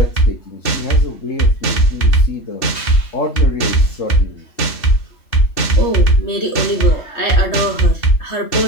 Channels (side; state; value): right; late; 3.2 ms